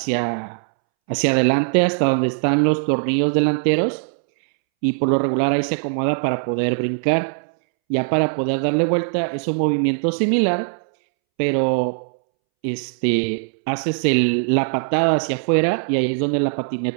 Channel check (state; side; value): silent; left; 65 dB below the other